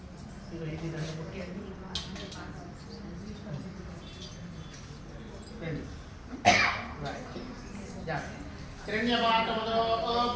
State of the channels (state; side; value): identical; both; correlation 1.00